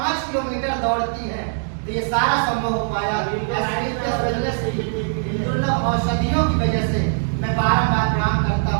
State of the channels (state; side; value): silent; left; digital silence